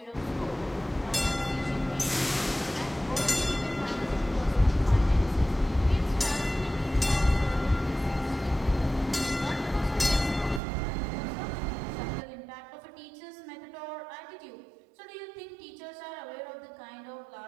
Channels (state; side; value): drops out; left; at 10.6 s